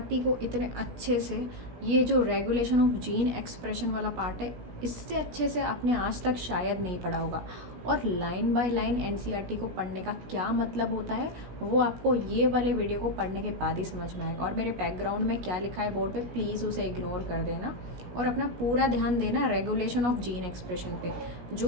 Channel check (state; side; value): late; left; 16 ms